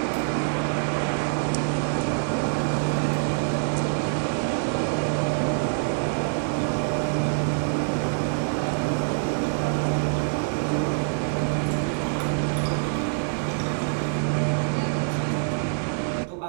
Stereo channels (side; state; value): left; silent; 61 dB below the other